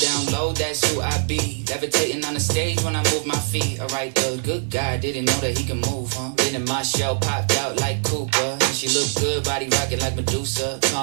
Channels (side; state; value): left; silent; 60 dB below the other